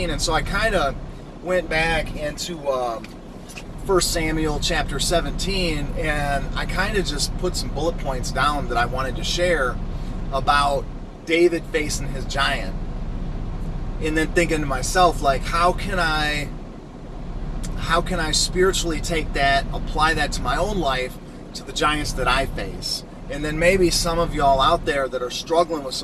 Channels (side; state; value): both; identical; correlation 1.00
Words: And so I kind of went back into 1 Samuel chapter 17, and I kind of just put some bullet points down that I wanted to share about David facing his giant. And then thinking to myself, like, how can I spiritually take that, apply that to my own life, to the giants that I face? And then maybe some of y'all out there that are struggling with